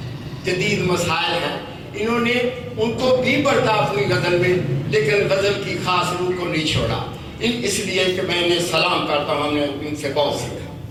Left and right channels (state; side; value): identical; both; correlation 1.00